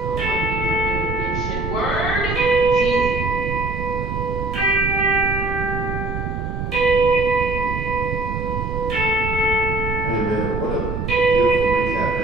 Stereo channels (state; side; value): noise; right; rumble, 4 dB below the sound